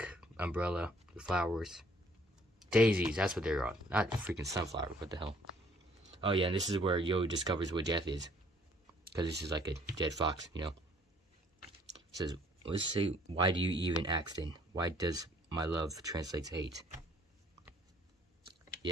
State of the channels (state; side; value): normal; both; correlation 0.61